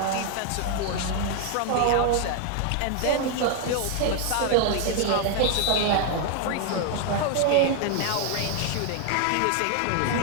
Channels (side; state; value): both; different; correlation 0.00